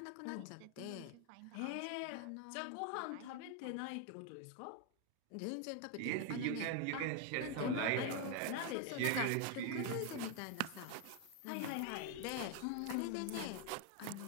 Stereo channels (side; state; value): both; different; correlation 0.01